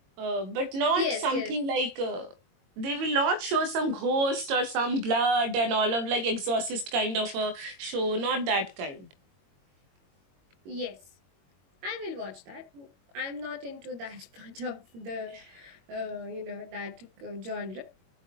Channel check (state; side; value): late; left; 22 ms